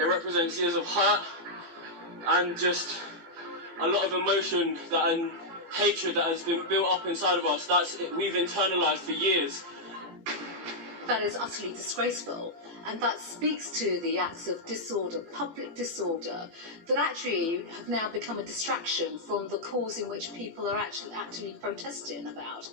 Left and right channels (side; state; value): left; late; 18 ms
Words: represents years of hurt and just a lot of emotion and hatred that has been built up inside of us. We've internalised for years. That is utterly disgraceful, and that speaks to the acts of disorder, public disorder, that actually have now become a distraction from the cause in which people are actually protesting about.